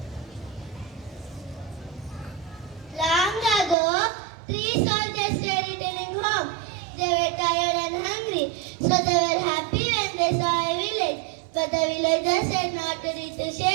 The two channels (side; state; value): left; drops out; at 3.8 s